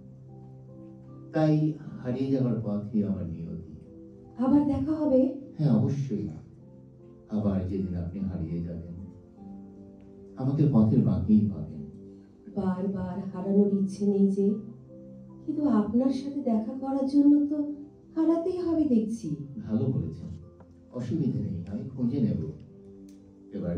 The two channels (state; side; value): identical; both; correlation 1.00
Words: তাই হারিয়ে যাওয়ার পথই আমার নিয়তি। আবার দেখা হবে? হ্যাঁ, অবশ্যই। আবার যেদিন আপনি হারিয়ে যাবেন, আমাকে পথের বাঁকেই পাবেন। বারবার হারানোর ইচ্ছে নেই যে, কিন্তু আপনার সাথে দেখা করার জন্য তো হারাতেই হবে দেখছি। ভালো বলেছেন, অসুবিধে নেই, আমি খুঁজে নেব। এবার